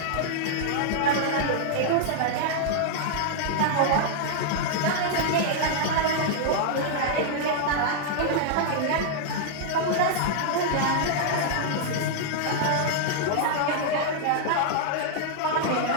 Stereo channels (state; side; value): different; both; correlation -0.01